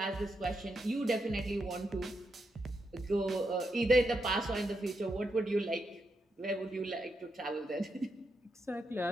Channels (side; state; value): both; normal; correlation 0.83